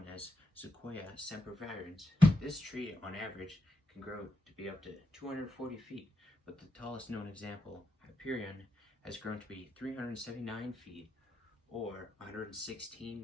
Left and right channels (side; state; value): both; normal; correlation 0.85